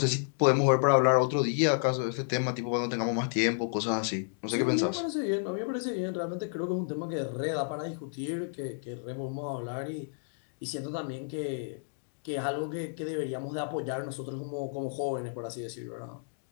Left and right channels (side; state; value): right; silent; digital silence